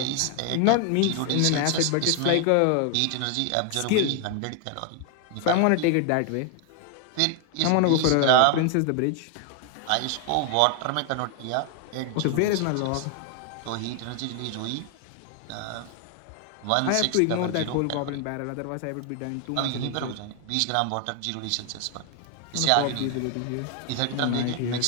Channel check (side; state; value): both; different; correlation 0.00